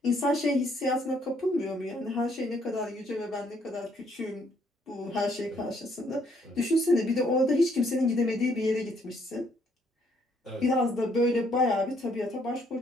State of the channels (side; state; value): both; normal; correlation 0.68